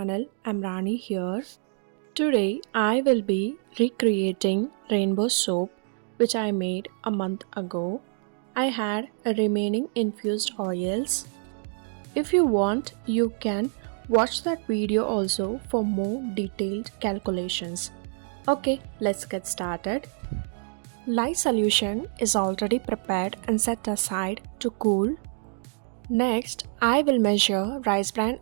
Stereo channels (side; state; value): left; silent; 60 dB below the other